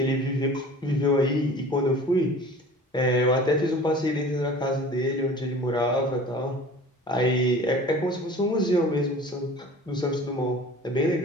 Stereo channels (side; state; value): both; normal; correlation 0.43